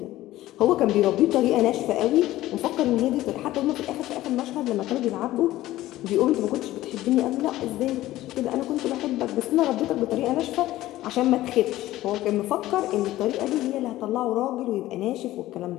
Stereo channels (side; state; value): right; quieter; 15.7 dB